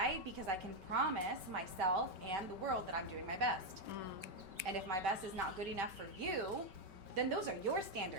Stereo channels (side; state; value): left; late; 5.2 ms